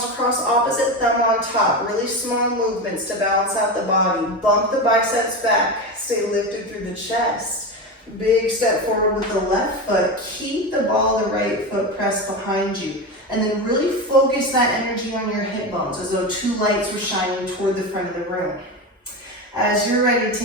cross opposite thumb on top. Really small movements to balance out the body. Bump the biceps back. Stay lifted through the chest. Big step forward with the left foot. Keep the ball of the right foot pressed behind you. And then really focus that energy on your hip bones as though 2 lights were shining toward the front of the room. As you're ready,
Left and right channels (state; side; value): normal; both; correlation 0.20